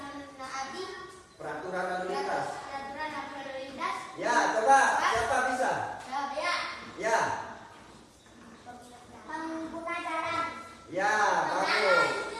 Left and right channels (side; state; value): both; identical; correlation 1.00